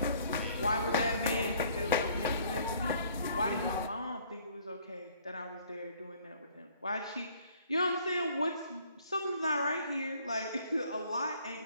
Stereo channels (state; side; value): inverted; both; correlation -0.59